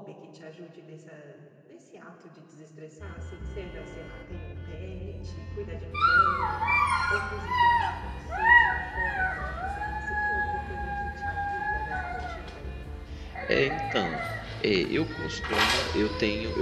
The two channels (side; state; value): both; identical; correlation 1.00